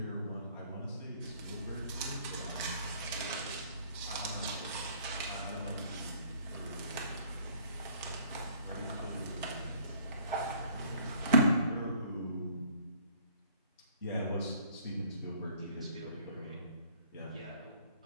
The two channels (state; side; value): inverted; both; correlation -0.57